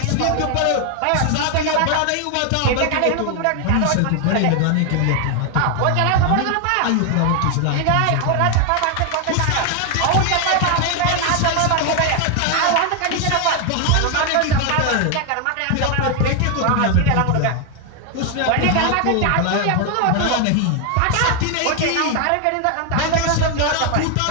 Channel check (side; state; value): both; different; correlation 0.01